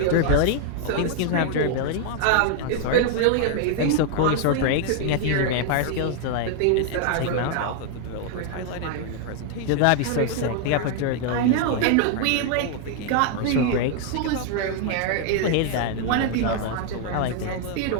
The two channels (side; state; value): both; different; correlation 0.00